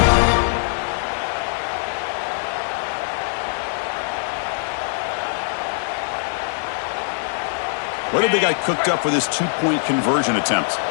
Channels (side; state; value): right; silent; 64 dB below the other